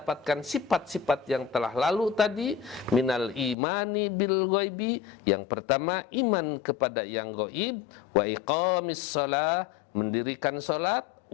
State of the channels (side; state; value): right; drops out; at 3.6 s